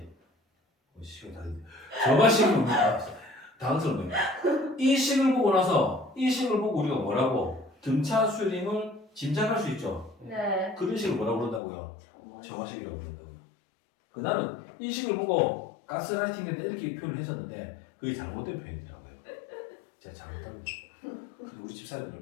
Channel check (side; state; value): right; drops out; at 11.6 s